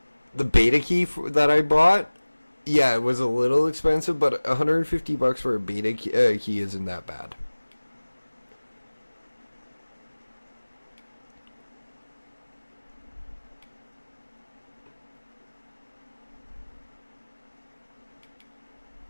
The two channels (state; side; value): inverted; both; correlation -1.00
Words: beta key that I bought, yeah, it was a little expensive, but $150 for a beta key isn't that bad.